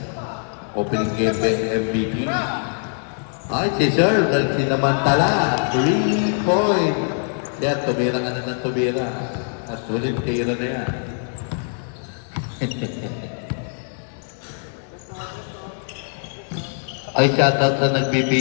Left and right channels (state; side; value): silent; right; 62 dB below the other